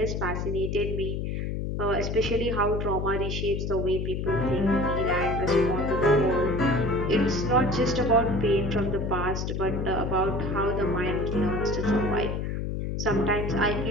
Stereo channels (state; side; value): noise; left; hum, 2 dB below the sound